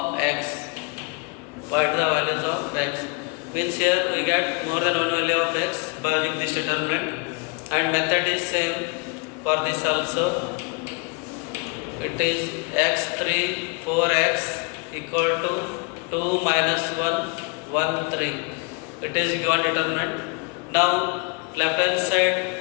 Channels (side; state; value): right; quieter; 31.3 dB